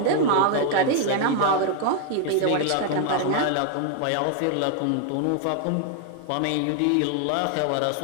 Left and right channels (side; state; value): both; different; correlation 0.00